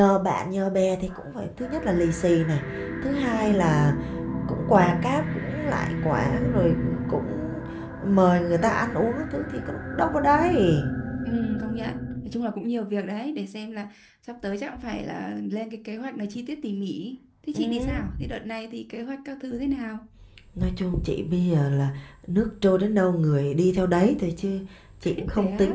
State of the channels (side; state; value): both; identical; correlation 1.00